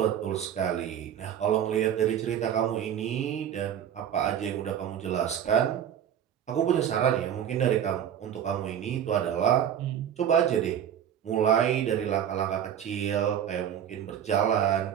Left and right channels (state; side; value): quieter; left; 9.5 dB